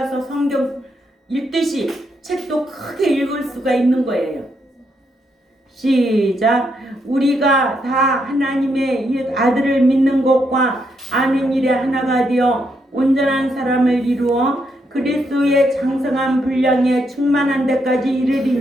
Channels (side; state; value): both; normal; correlation 0.78